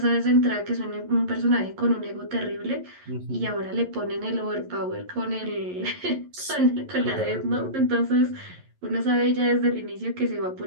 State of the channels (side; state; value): left; late; 11 ms